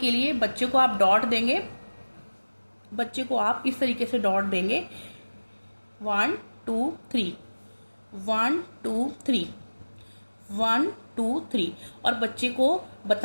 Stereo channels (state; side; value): inverted; both; correlation -1.00